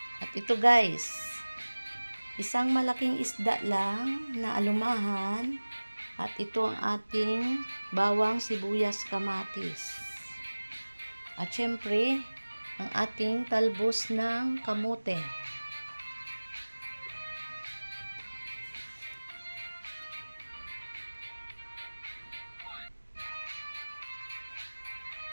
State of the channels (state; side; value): inverted; both; correlation -1.00